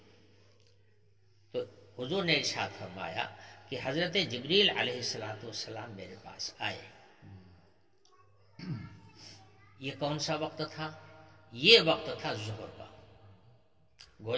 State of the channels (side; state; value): both; identical; correlation 1.00